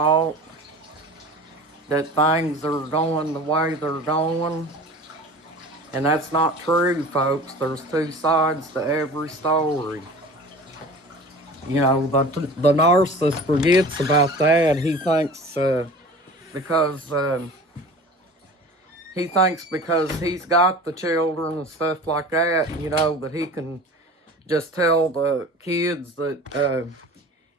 that things are going the way they're going. And that's not true, folks. There's two sides to every story. You know, the narcissist forgets about that. Because he thinks because he's got the children and stuff like that, you know, that he can just tell the kids that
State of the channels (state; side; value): normal; both; correlation 0.40